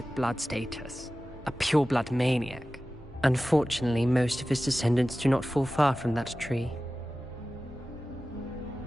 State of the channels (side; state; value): both; normal; correlation 0.95